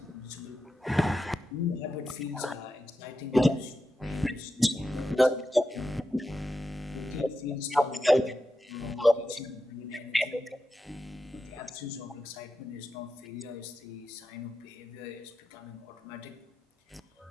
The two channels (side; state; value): both; normal; correlation 0.89